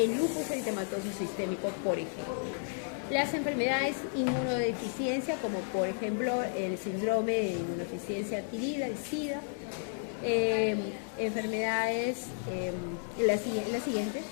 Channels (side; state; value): right; silent; digital silence